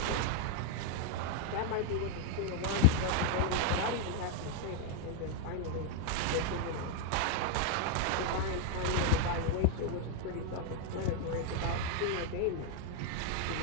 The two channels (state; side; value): different; both; correlation 0.00